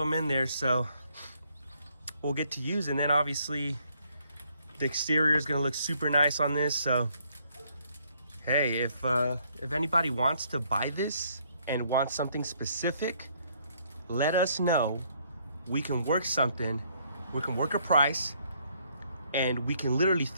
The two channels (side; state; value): both; inverted; correlation -0.68